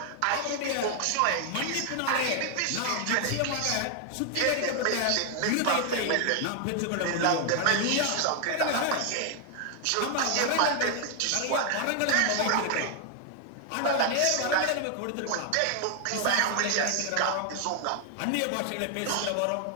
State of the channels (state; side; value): different; both; correlation 0.00